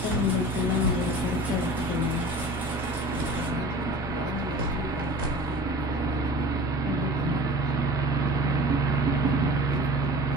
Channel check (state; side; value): normal; both; correlation 0.40